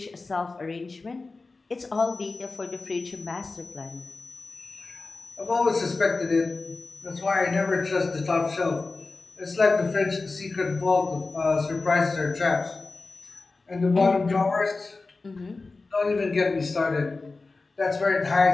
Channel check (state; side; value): quieter; right; 3.7 dB